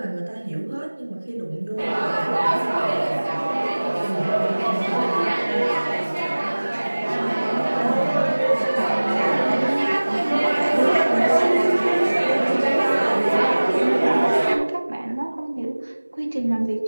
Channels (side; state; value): both; inverted; correlation -1.00